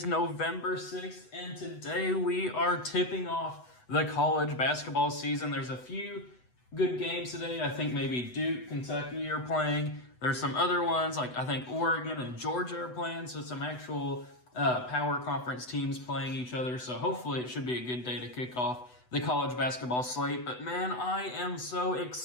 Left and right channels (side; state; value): right; late; 8.0 ms